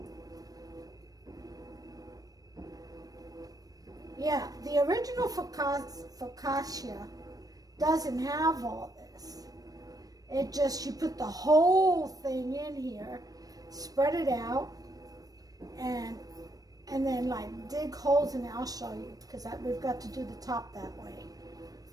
Yeah, the original focaccia doesn't have all this. It just, you put the whole thing in here, spread it out, and and then like dig holes in it. I'll show you, because we've got to do the top that way.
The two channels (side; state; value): left; late; 0.18 ms